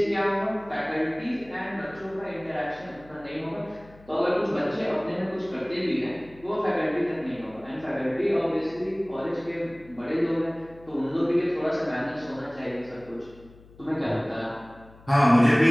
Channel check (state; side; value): noise; left; hum, 23 dB below the sound